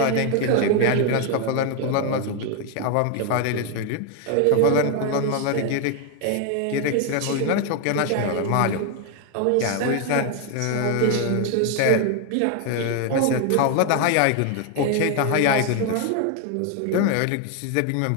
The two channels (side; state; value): both; different; correlation 0.01